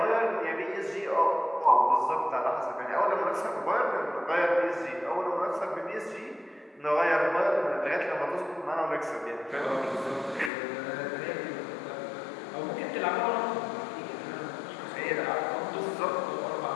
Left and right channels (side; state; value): right; drops out; at 10.5 s